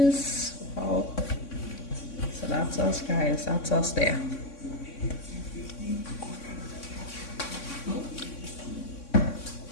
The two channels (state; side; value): late; right; 3.6 ms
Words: Oh. So that's us, guys. That's us there.